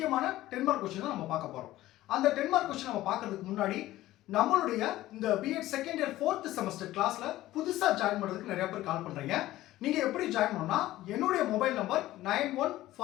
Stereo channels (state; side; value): quieter; right; 15.7 dB